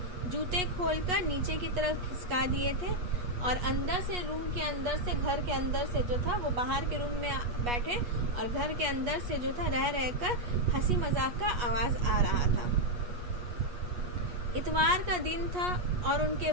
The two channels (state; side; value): late; left; 8.3 ms